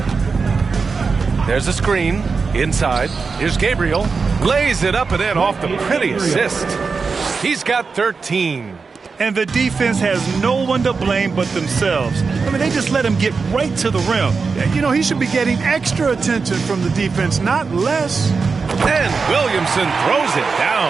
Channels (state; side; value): quieter; left; 4.8 dB